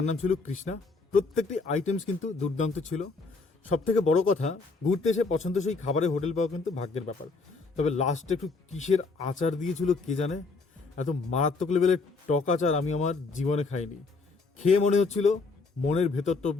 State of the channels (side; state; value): right; quieter; 4.1 dB